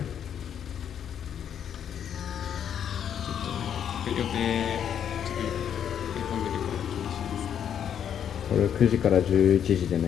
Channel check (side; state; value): right; quieter; 8.9 dB